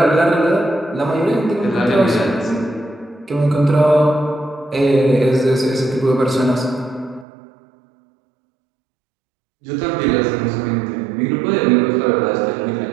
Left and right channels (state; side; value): drops out; left; at 7.2 s